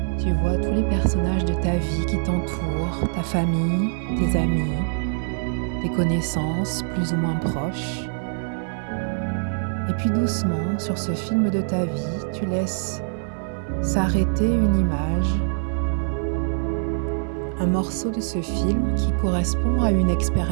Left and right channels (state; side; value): silent; left; 57 dB below the other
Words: Tu vois tous les personnages de ta vie qui t'entourent, ta famille, tes amis, tes connaissances plus ou moins proches. Et puis doucement, sur ce film de ta vie, tu laisses s'arrêter une image, un morceau de ce film qui correspond à une